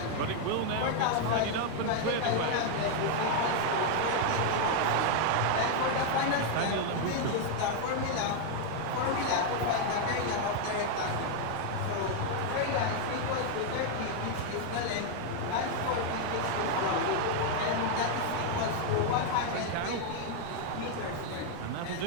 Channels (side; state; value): both; different; correlation 0.00